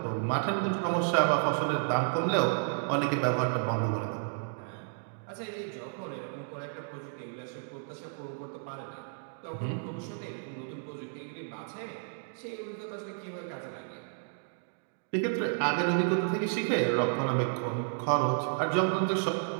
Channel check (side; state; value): left; silent; digital silence